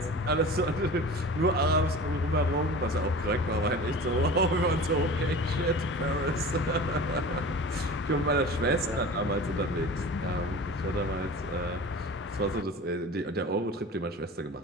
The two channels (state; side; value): normal; both; correlation 0.37